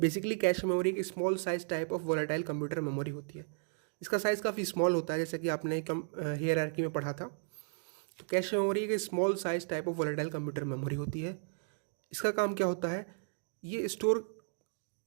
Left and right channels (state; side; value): silent; left; digital silence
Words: कैश मेमोरी एक small size type of volatile computer memory होती है। इसका साइज़ काफ़ी स्मॉल होता है, जैसे कि आपने हायरार्की में पढ़ा था। तो कैश मेमोरी एक small size type of volatile computer memory होती है। इसका काम क्या होता है? ये स्टोर